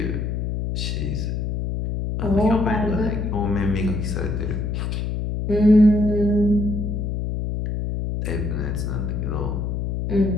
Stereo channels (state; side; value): noise; left; hum, 2 dB below the sound